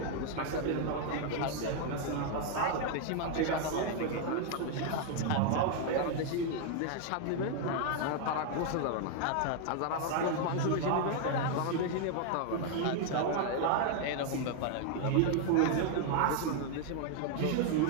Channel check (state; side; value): different; both; correlation 0.00